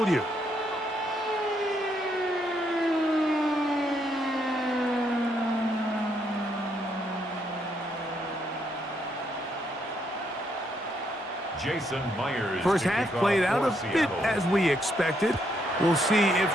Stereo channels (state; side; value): normal; both; correlation 0.75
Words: Jason Myers. First half played out a bit as we expected. We'll see if